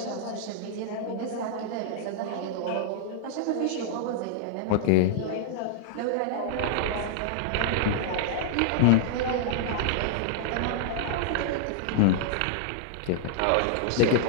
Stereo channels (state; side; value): different; both; correlation -0.01